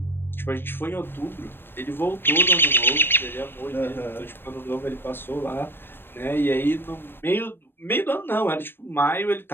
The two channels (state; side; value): late; right; 0.10 ms